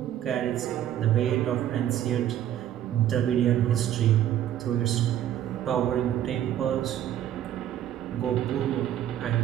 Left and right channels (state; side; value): quieter; left; 11.3 dB